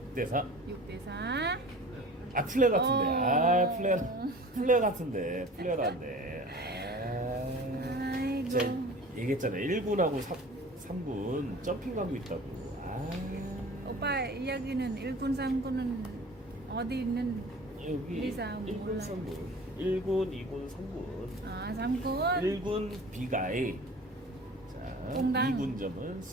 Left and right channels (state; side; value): normal; both; correlation 0.42